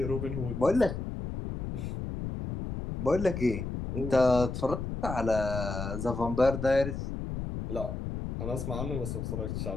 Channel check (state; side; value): noise; left; rumble, 5 dB below the sound